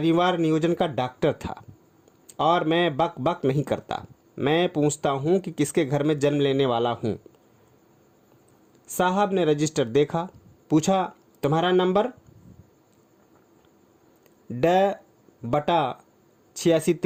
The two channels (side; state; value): both; identical; correlation 1.00